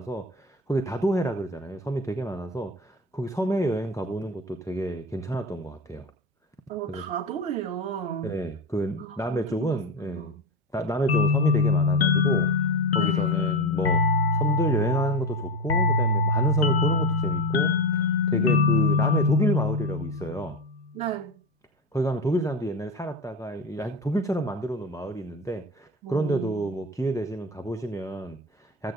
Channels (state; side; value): normal; both; correlation 0.20